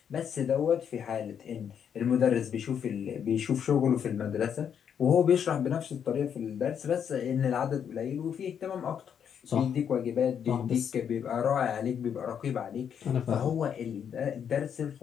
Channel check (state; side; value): quieter; right; 8.1 dB